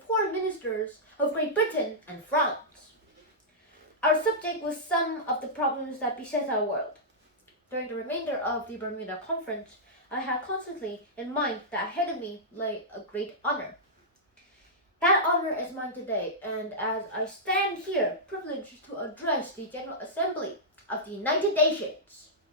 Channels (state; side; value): normal; both; correlation -0.12